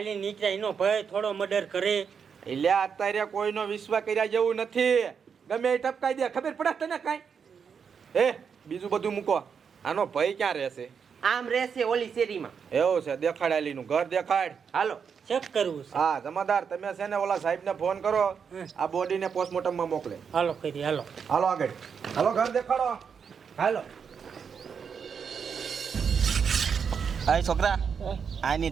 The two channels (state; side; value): quieter; left; 6.6 dB